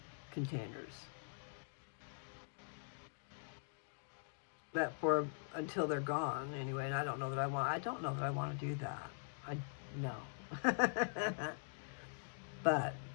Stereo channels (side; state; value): right; silent; digital silence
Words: containers. That for until they're gone anyway, and I don't know that I want to do that. No. But